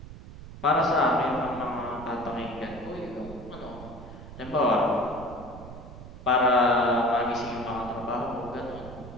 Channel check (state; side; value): noise; right; rumble, 14 dB below the sound